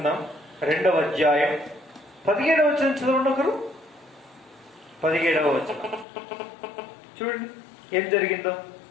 2వ అధ్యాయం 17వ వచనం చదవండి ఒకరు. 17వ వచనం చూడండి ఏం జరిగిందో.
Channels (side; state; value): right; drops out; at 6.1 s